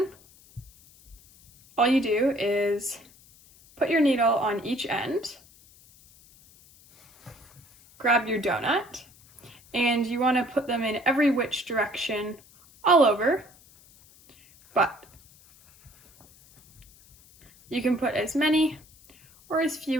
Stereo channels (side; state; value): left; noise; hiss, 26 dB below the sound